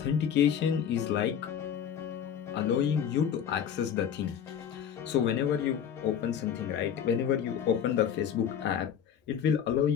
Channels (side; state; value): right; quieter; 8.6 dB